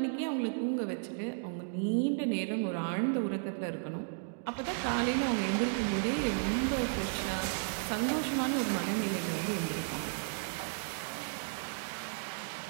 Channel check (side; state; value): left; silent; digital silence